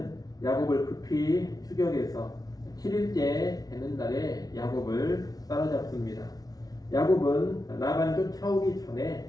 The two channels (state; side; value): late; right; 0.18 ms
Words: 야곱을 급히 추격해서 7일째 되는 날에 야곱을 따라잡습니다. 야곱은 라반이 쫓아오기